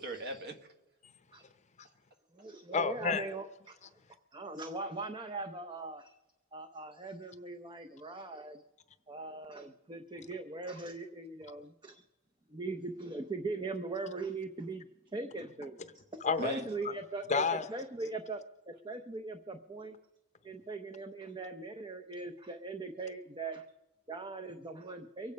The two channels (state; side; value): normal; both; correlation 0.11